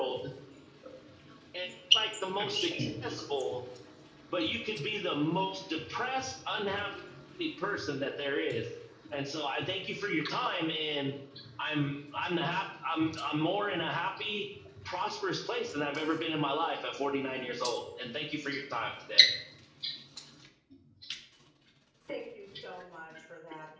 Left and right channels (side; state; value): both; identical; correlation 1.00